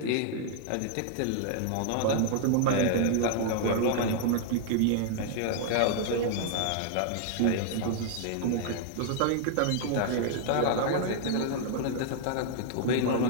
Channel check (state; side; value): different; both; correlation 0.00